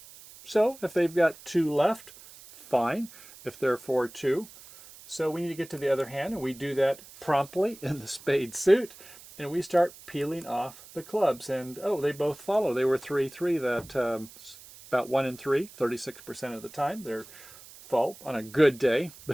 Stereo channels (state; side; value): noise; right; hiss, 19 dB below the sound